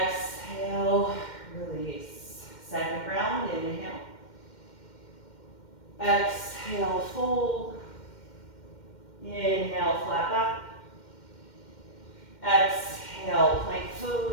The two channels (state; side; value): late; right; 2.1 ms